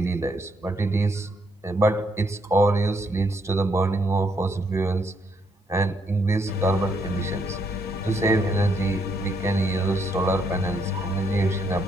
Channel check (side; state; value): both; normal; correlation 0.74